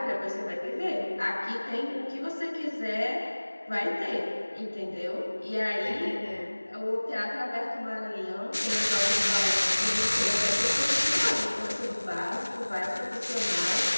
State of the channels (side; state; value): both; inverted; correlation -1.00